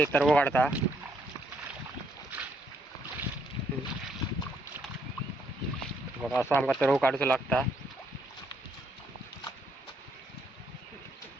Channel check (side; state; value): both; normal; correlation 0.72